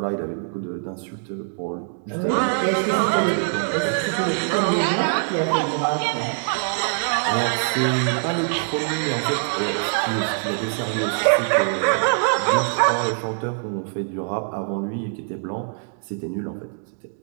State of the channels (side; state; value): left; silent; digital silence